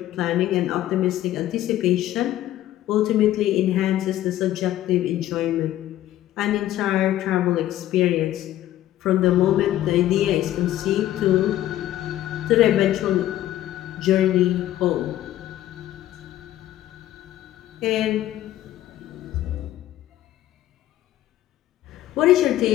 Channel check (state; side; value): quieter; right; 13.5 dB